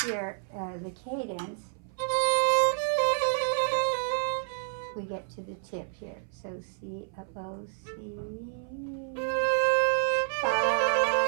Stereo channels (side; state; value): left; silent; 56 dB below the other